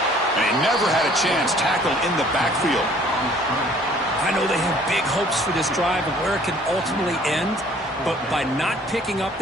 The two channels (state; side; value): normal; both; correlation 0.56